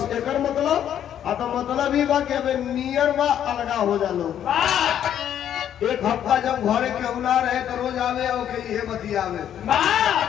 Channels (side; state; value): right; quieter; 10.1 dB